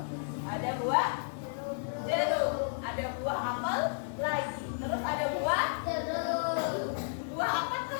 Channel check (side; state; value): right; silent; digital silence